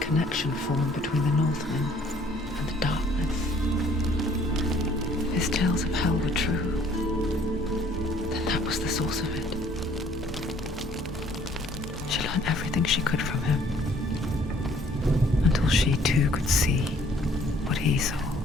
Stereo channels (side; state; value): both; normal; correlation 0.59